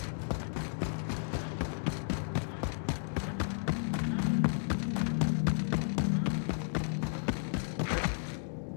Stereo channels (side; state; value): right; silent; digital silence